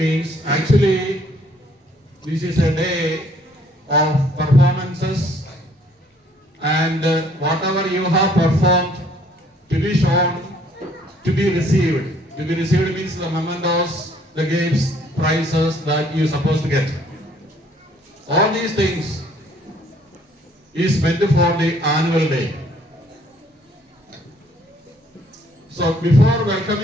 actually this is a day of performances and whatever you have performed to be shown, to be received. To be received means the mementos, the gifts, prizes that you are supposed to get. All these things is meant for the annual day. So before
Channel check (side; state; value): both; normal; correlation 0.62